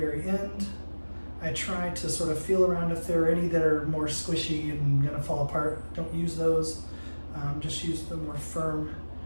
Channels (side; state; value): both; inverted; correlation -1.00